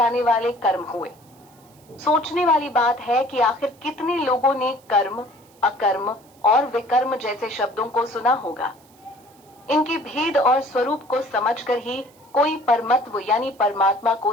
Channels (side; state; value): right; noise; hiss, 29 dB below the sound